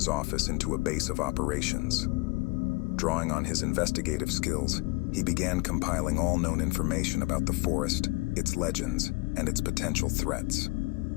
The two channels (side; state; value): right; quieter; 25.2 dB